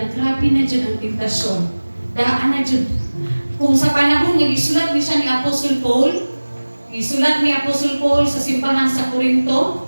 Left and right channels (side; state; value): both; inverted; correlation -1.00